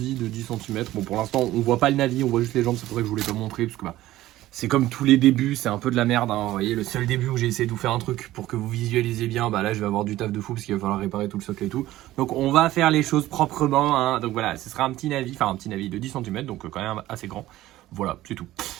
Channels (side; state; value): left; quieter; 15.5 dB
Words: de 10 cm. Bon, pour l'instant, on voit pas le navi, on voit juste les jambes. C'est pour ça que je voulais pas montrer, parce que bah, c'est comme tous les débuts, c'est un peu de la merde. Hein. Vous voyez, le seul début où j'ai essayé de vous faire un truc pour que vous visualisiez bien, bah là, je vais avoir du taf de fou parce qu'il va falloir réparer tout le socle et tout. Donc on va faire les choses proprement. Hein. Donc voilà, ce sera un petit navi de 10 cm, donc quand même assez grand. Voilà, c'est tout.